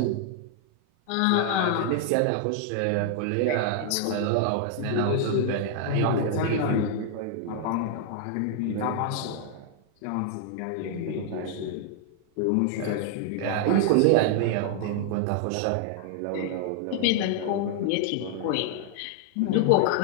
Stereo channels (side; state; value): both; different; correlation -0.01